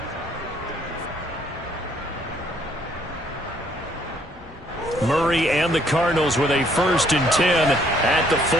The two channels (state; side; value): normal; both; correlation 0.65